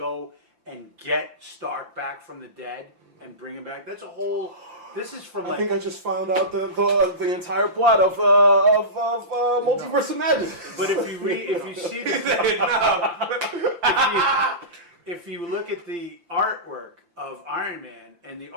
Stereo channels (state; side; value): late; left; 5.8 ms